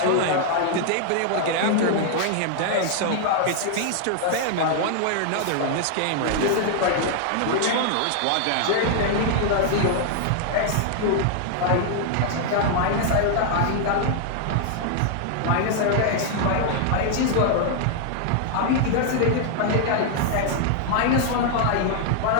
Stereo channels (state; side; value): different; both; correlation 0.00